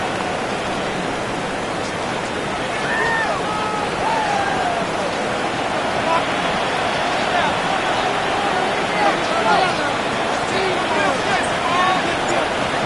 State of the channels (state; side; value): identical; both; correlation 1.00